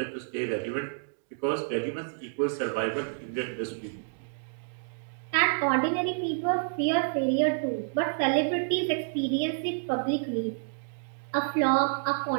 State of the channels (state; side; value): silent; left; digital silence